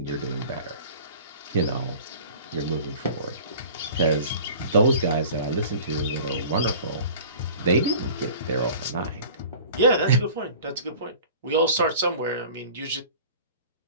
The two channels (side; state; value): both; inverted; correlation -0.43